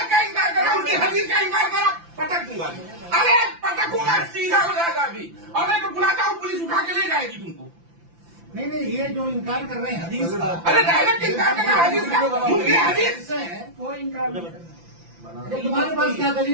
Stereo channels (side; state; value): left; late; 5.9 ms